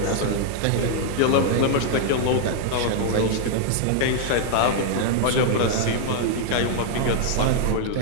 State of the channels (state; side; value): different; both; correlation -0.01